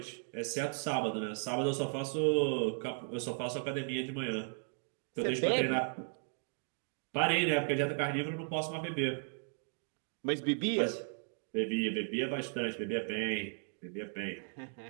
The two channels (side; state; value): left; silent; 54 dB below the other